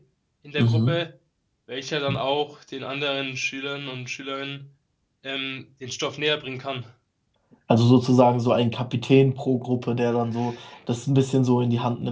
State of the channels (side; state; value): both; identical; correlation 1.00